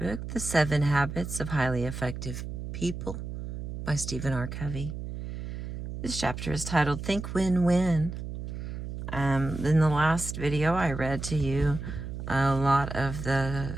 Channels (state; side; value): noise; right; hum, 7 dB below the sound